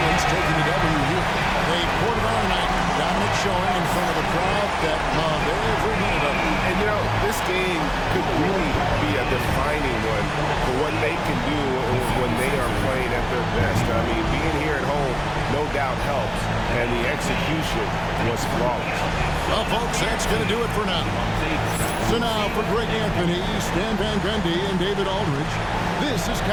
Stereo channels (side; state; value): both; identical; correlation 1.00